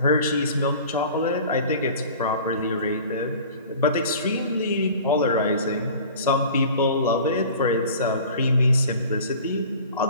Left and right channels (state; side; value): inverted; both; correlation -0.43